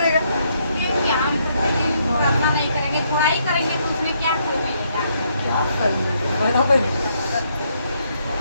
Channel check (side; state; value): both; inverted; correlation -0.73